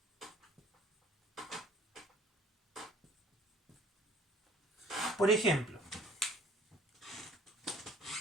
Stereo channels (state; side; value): normal; both; correlation 0.54